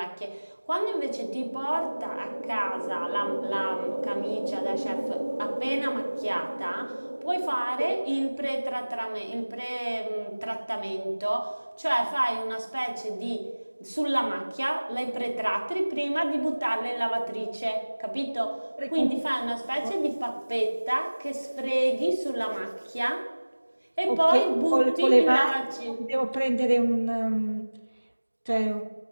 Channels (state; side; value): inverted; both; correlation -1.00